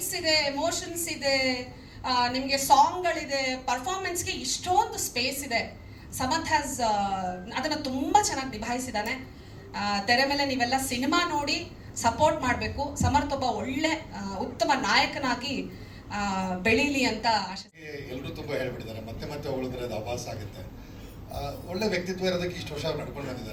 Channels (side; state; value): both; identical; correlation 1.00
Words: ಇದೆ, ಎಮೋಷನ್ಸ್ ಇದೆ, ನಿಮಗೆ ಸಾಂಗ್ಗಳಿದೆ, ಪರ್ಫಾರ್ಮೆನ್ಸ್ಗೆ ಇಷ್ಟೊಂದು ಸ್ಪೇಸ್ ಇದೆ. ಸಮರ್ಥ್ ಹ್ಯಾಸ್ ಅದನ್ನು ತುಂಬ ಚೆನ್ನಾಗಿ ನಿಭಾಯಿಸಿದ್ದಾನೆ. ತೆರೆ ಮೇಲೆ ನೀವೆಲ್ಲ ಸಿನಿಮಾ ನೋಡಿ ಸಪೋರ್ಟ್ ಮಾಡಬೇಕು. ಸಮರ್ಥ್ ಒಬ್ಬ ಒಳ್ಳೆ ಉತ್ತಮ ನಾಯಕನಾಗಿ ಬೆಳೀಲಿ ಅಂತ ಆಶೆ. ಎಲ್ಲರೂ ತುಂಬ ಹೇಳ್ಬಿಟ್ಟಿದ್ದಾರೆ, ಮತ್ತೆ ಹೊಗಳಿದ್ರೆ ಅದು ಆಭಾಸ ಆಗುತ್ತೆ. ಒಳ್ಳೆ ವ್ಯಕ್ತಿತ್ವ ಇರೋದಕ್ಕೆ ಇಷ್ಟು ವರ್ಷ ನಡ್ಕೊಂಡು